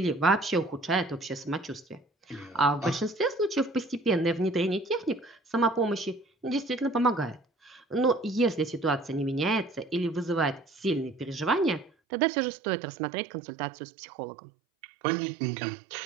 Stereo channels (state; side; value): drops out; left; at 11.9 s